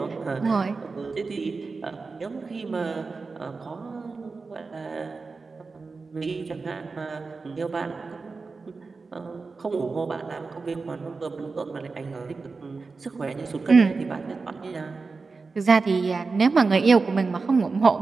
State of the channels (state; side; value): quieter; left; 4.2 dB